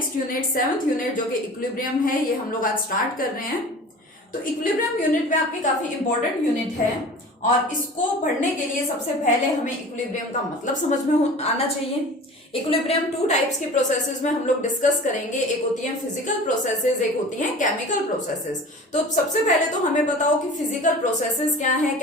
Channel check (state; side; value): normal; both; correlation 0.40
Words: unit 7th unit जो कि equilibrium है, ये हम लोग आज start कर रहे हैं. तो इक्विलिब्रियम यूनिट में आपकी काफी इंपॉर्टेंट यूनिट है और इसको पढ़ने के लिए सबसे पहले हमें इक्विलिब्रियम का मतलब समझ में आना चाहिए. इक्विलिब्रियम टू टाइप्स की प्रोसेसेस में हम लोग डिस्कस करेंगे. एक होती है फिजिकल प्रोसेसेस, एक होती है केमिकल प्रोसेसेस. तो सबसे पहले तो हमें बताओ कि फिजिकल प्रोसेसेस क्या है,